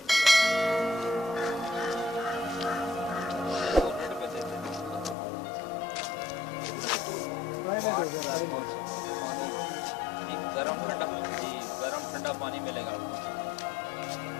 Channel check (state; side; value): drops out; right; at 5.2 s